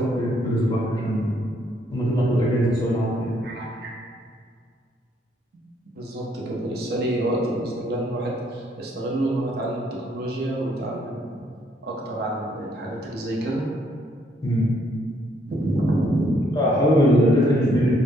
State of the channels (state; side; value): normal; both; correlation 0.69